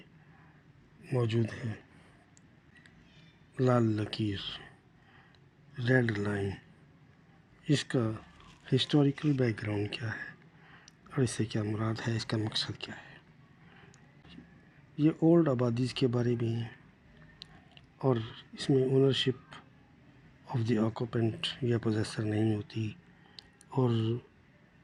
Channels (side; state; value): both; identical; correlation 1.00